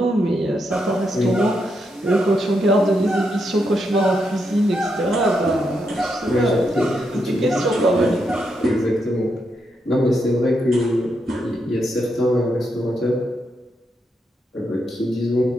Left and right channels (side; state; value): both; normal; correlation 0.81